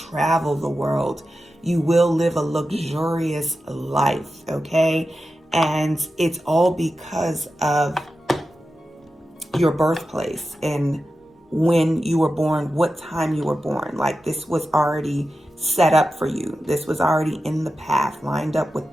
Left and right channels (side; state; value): both; normal; correlation 0.92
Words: the world. You will live a luxurious life, okay? And it's all because of your birthplace and when you were born, what time you were born. Like this was already set up for you. This was already in the path, lined up with